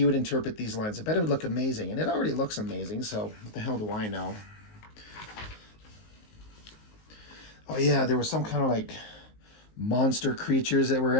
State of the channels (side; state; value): right; late; 19 ms